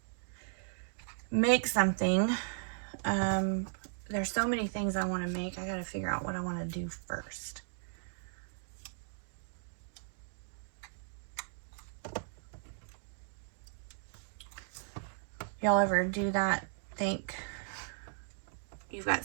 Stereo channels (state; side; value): silent; left; digital silence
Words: make something. There's so many things I want to make. I got to figure out what I want to do first. Y'all ever do that? Think you've